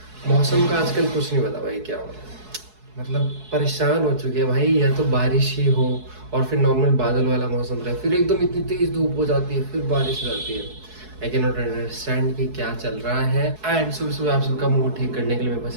मौसम का आजकल कुछ नहीं पता भाई क्या हो रहा है। मतलब परेशान हो चुके हैं भाई। या तो बारिश ही हो और फिर नॉर्मल बादल वाला मौसम रहे, फिर एकदम इतनी तेज धूप हो जाती है, फिर बारिश हो जाती है। आई कैन नॉट अंडरस्टैंड कि क्या चल रहा है। एंड सुबह सुबह आप सबका मूड ठीक करने के लिए मेरे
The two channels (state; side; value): late; left; 4.7 ms